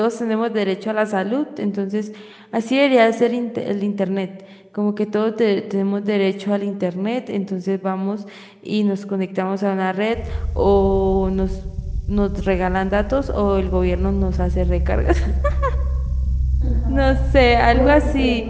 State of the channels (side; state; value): both; identical; correlation 1.00